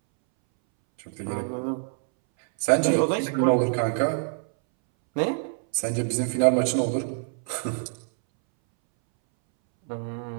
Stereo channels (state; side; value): silent; left; 61 dB below the other